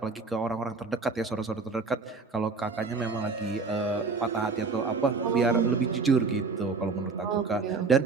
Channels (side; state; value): left; quieter; 4.4 dB